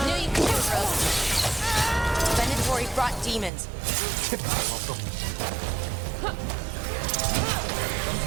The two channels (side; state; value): left; drops out; at 3.5 s